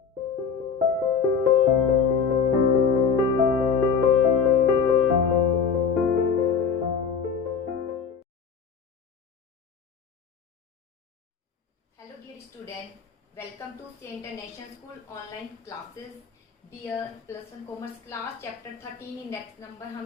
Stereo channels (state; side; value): quieter; right; 6.3 dB